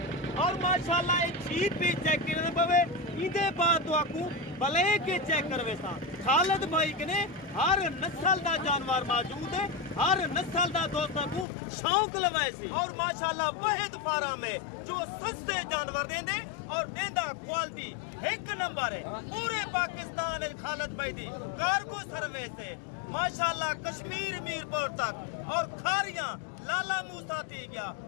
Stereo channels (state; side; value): drops out; right; at 11.5 s